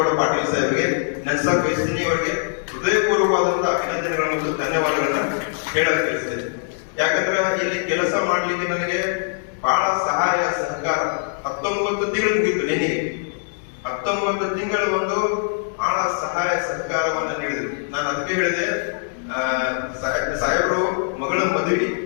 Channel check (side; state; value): right; silent; 64 dB below the other